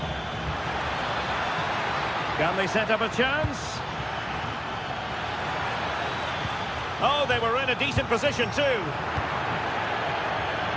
Can they set up a chance? Oh, they were in a decent position too.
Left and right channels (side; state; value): both; identical; correlation 1.00